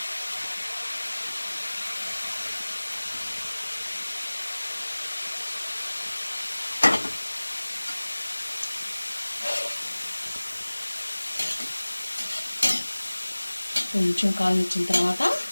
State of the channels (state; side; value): inverted; both; correlation -1.00